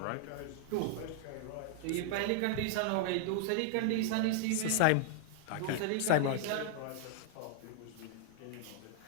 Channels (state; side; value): different; both; correlation -0.01